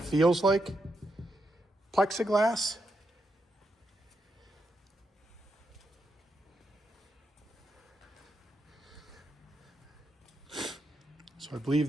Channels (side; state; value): both; normal; correlation 0.83